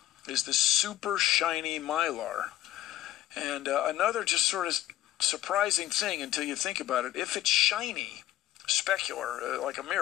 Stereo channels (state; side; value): quieter; right; 13.8 dB